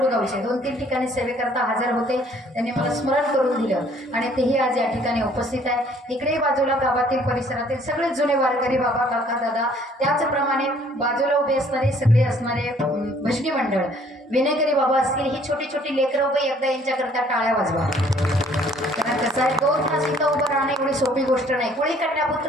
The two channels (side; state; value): both; normal; correlation 0.59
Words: गावचे 2-3 ठिकाणी सेवेकरता हजर होते, त्यांनी मला स्मरण करून दिलं आणि तेही आज या ठिकाणी उपस्थित आहे. इकडे बाजूला गावातील परिसरातील सगळे जुने वारकरी बाबा काका दादा, त्याचप्रमाणे बाजूला उभे असणारे सगळे असणारे भजनी मंडळ विनेकरी बाबा असतील. ही छोटी छोटी लेकरं उभे एकदा यांच्याकरता टाळ्या वाजवा. कारण कसं आहे 2 तास इथं उभं राहणं एवढी सोपी गोष्ट नाही. कोळी